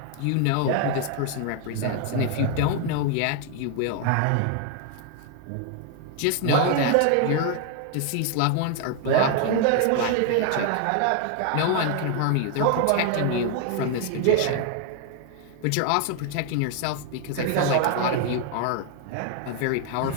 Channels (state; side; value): different; both; correlation 0.00